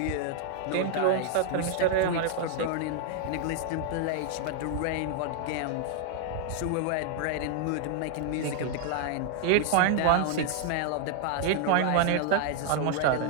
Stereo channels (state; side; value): different; both; correlation 0.00